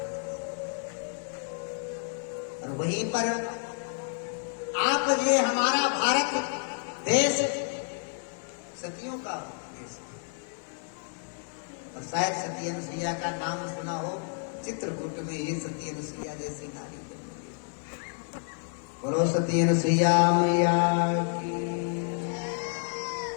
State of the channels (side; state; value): right; silent; 57 dB below the other